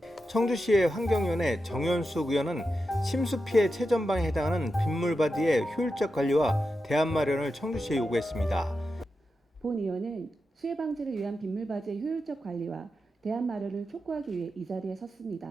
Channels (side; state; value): both; normal; correlation 0.89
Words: 청주시의 환경위원회 정현숙 의원은 침수 피해 최전방에 해당하는 빗물바디의 효율적 관리와 대안 마련을 청주시에 요구했습니다. 본 의원은 수해 방지를 위한 빗물바지의 효율적 관리와 대안 마련을 촉구하기 위해 이 자리에